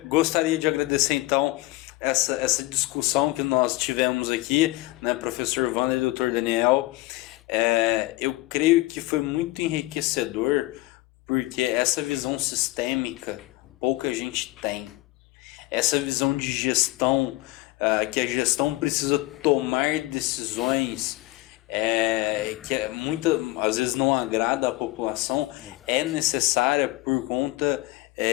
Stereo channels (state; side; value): quieter; right; 20.1 dB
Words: Gostaria de agradecer então essa discussão que nós tivemos aqui, né, professor Wander e Dr. Daniel. Eu creio que foi muito enriquecedor, porque essa visão sistêmica pouca gente tem. Essa visão de gestão, que a gestão precisa tomar decisões que às vezes não agrada a população, é necessária por conta